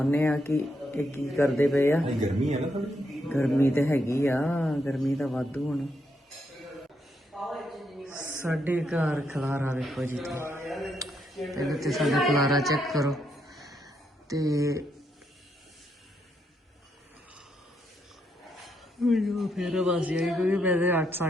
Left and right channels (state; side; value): normal; both; correlation 0.78